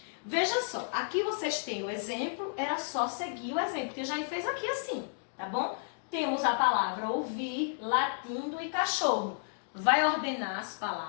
Veja só, aqui vocês têm o exemplo, era só seguir o exemplo, que eu já fez aqui assim, tá bom? Temos a palavra ouvir, latindo e cachorro. Vai ordenar as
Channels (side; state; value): right; silent; digital silence